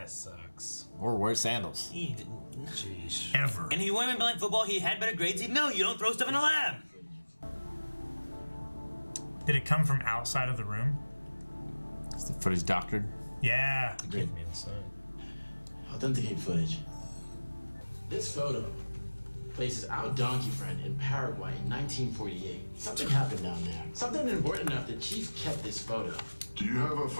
sucks. Or wear sandals. Jeez. Ever. And if he wouldn't have been playing football, he had better grades. No, you don't throw stuff in a lab. Did it come from outside of the room? Is the footage doctored? Yeah. Give me the sign. Authenticate footage. This photo places our donkey friend in Paraguay in 1948. Something happened down there. Something important enough that Chief kept this photo. Do you have a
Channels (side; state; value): both; inverted; correlation -1.00